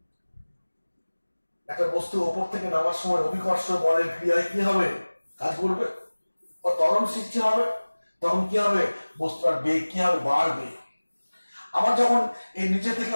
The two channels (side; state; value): both; inverted; correlation -1.00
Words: একটা বস্তু ওপর থেকে নামার সময় অভিকর্ষ বলের ক্রিয়ায় কি হবে, কাজ করবে, ও ত্বরণ সৃষ্টি হবে, তখন কি হবে, বস্তুটার বেগ কি হবে, বাড়বে। আবার যখন এই নিচে থেকে